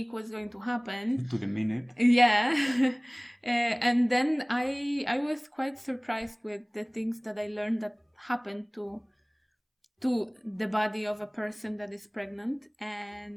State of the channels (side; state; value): both; identical; correlation 1.00